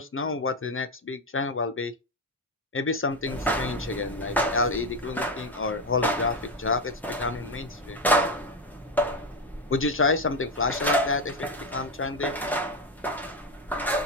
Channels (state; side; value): normal; both; correlation 0.13